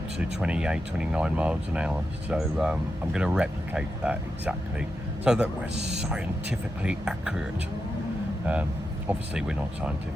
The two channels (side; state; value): both; normal; correlation 0.88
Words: to 28, 29 miles an hour. So I'm going to replicate that exactly so that we're scientifically accurate. Obviously we're not